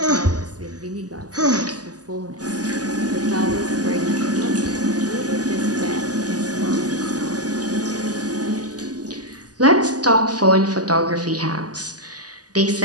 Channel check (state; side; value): late; left; 0.68 ms